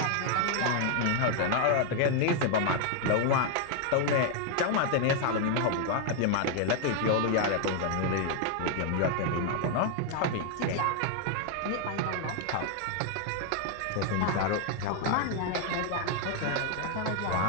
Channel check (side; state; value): both; different; correlation 0.00